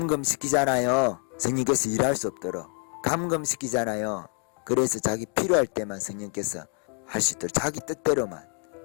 성령께서 일할 수 없도록 감금시키잖아요. 그래서 자기 필요할 때만 성령께서 할 수 있도록, 자기 뜻대로만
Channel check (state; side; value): quieter; right; 34.9 dB